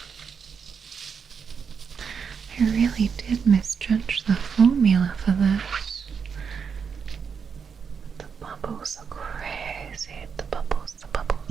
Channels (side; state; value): left; quieter; 6.4 dB